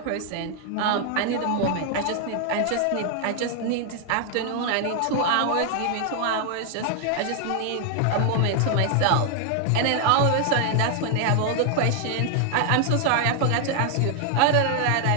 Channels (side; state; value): both; different; correlation 0.00